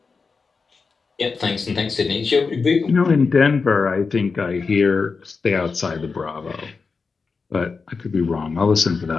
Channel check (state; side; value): quieter; right; 4.7 dB